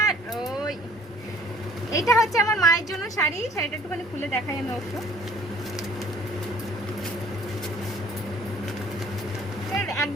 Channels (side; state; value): both; normal; correlation 0.55